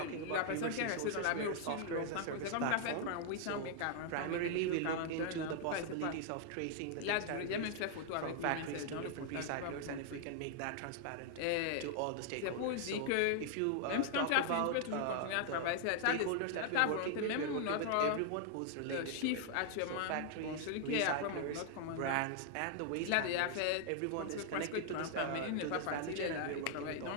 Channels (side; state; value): both; different; correlation 0.00